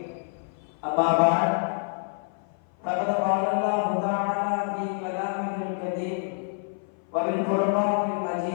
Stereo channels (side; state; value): right; silent; 56 dB below the other